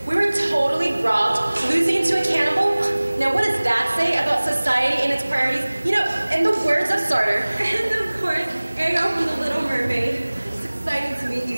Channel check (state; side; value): inverted; both; correlation -1.00